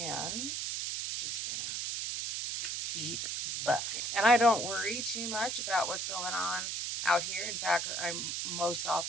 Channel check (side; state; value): right; noise; hiss, 2 dB below the sound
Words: just gonna keep buffing. And I don't worry too much about what's going on out here. In fact, I'm most